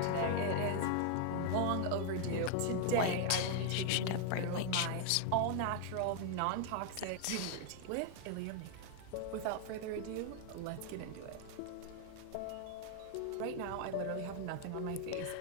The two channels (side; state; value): both; different; correlation 0.00